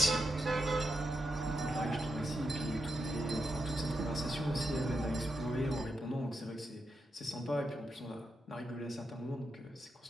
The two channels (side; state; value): both; normal; correlation 0.86